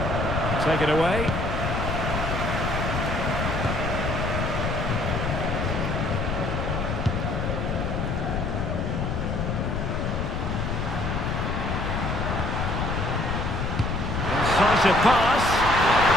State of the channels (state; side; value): noise; left; rumble, 1 dB below the sound